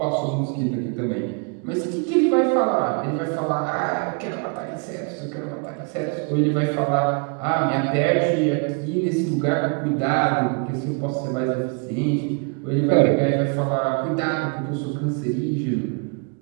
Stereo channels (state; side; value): quieter; left; 35.4 dB